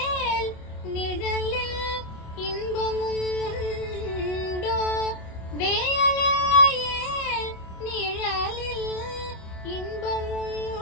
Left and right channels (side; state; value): right; late; 27 ms